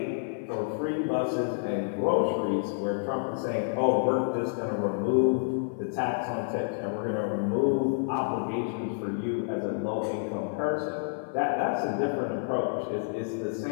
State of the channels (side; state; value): right; silent; 59 dB below the other